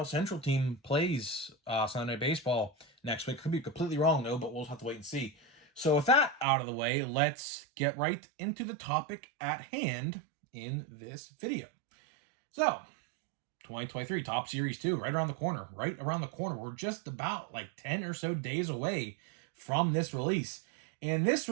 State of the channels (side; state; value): left; drops out; at 6.5 s